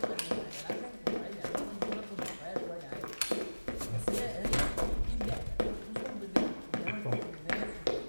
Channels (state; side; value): inverted; both; correlation -1.00